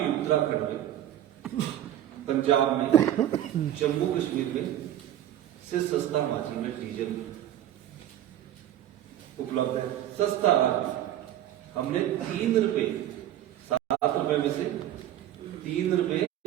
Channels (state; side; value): quieter; left; 12.1 dB